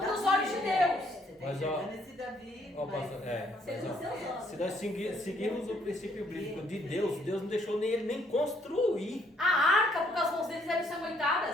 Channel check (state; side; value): normal; both; correlation 0.67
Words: os olhos de Deus. Você tá Mas, ó, enxergando esse Davi. Ó, mas- pastor, mas, Segundo ó, seus olhos. se nós seguirmos o princípio bíblico de Deus, Deus não deixou nem ele nem construir. A arca, porque as mãos deles eram